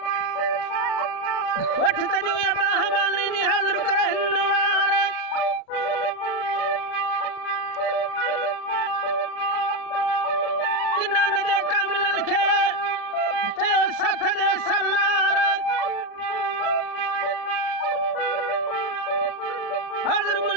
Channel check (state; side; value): late; right; 36 ms